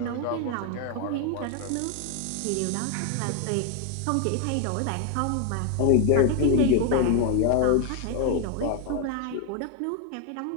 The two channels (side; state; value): both; different; correlation 0.01